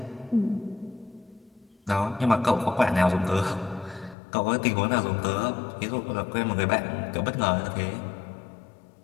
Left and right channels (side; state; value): right; drops out; at 4.2 s